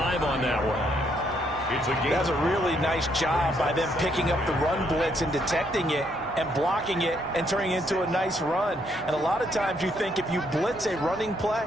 on that one. That's a really nice job by them picking up the run blitz and detecting it and blocking it and turning it into a nice run. And a lot of times you think if you blitz a running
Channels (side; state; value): both; normal; correlation 0.72